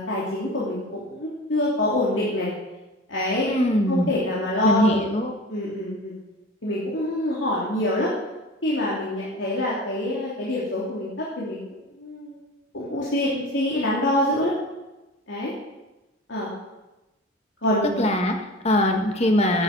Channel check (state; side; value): normal; both; correlation 0.36